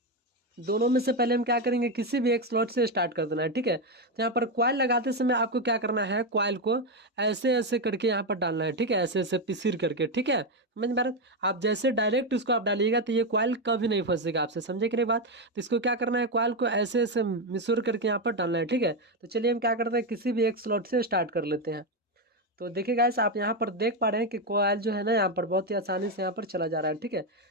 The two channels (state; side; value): normal; both; correlation 0.08